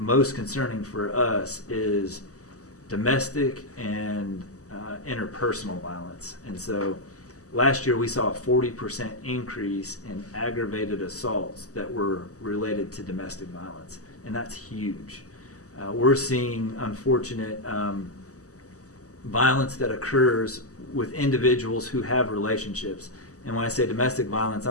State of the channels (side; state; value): right; late; 0.66 ms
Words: concerning for us, is domestic and interpersonal violence. And so last year we saw a 40% increase in aggravated assaults that were related to domestic violence, and that's huge. We're seeing unfortunate violence that occurs with individuals who have relationships. And when I say domestic violence,